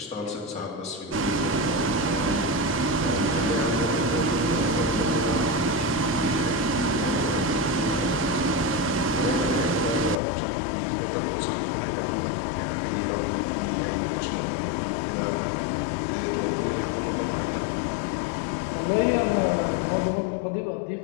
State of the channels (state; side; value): drops out; right; at 10.2 s